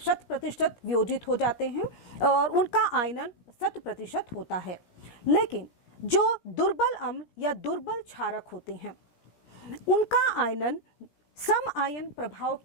वियोजित हो जाते हैं और उनका आयनन 100% होता है, लेकिन जो दुर्बल अम्ल या दुर्बल क्षारक होते हैं उनका आयनन सम आयन प्रभाव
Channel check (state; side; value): late; right; 17 ms